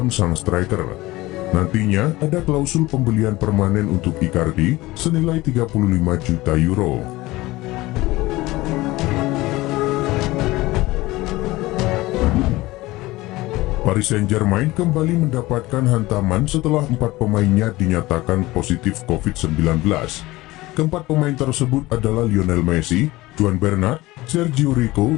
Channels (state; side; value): quieter; right; 19.3 dB